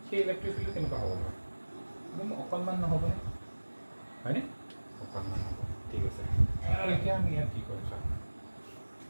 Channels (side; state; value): both; inverted; correlation -1.00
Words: সেই ইলেক্ট্ৰিক ফিল্ডটো কেনেকুৱা হ'ব বাৰু একদম অকণমান নহ'বনে হয়নে অকণমান হ'ব ঠিক আছে আৰু এতিয়া আমি ইয়াত কি কৰিম চাওঁ